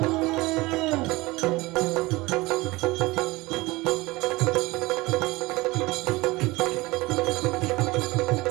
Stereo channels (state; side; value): quieter; left; 21.6 dB